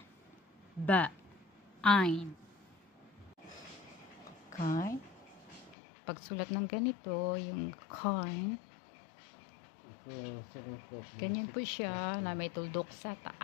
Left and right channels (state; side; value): drops out; right; at 5.8 s